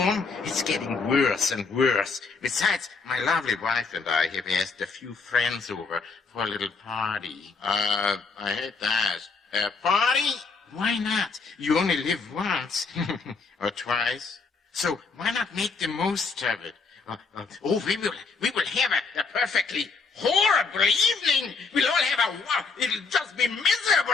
It's getting worse and worse. Besides, my lovely wife and I have asked a few friends over for a little party. I hate to ask. A party? Why not? You only live once. Or twice. So why not make the most of it? We will have a perfectly horrible evening. We'll all have it'll just be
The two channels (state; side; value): quieter; right; 4.6 dB